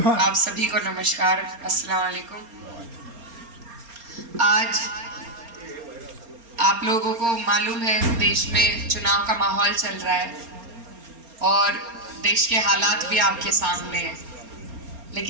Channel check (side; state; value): left; late; 4.3 ms